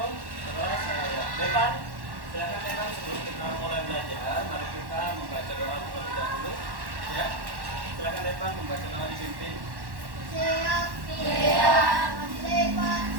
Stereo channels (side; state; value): left; late; 1.1 ms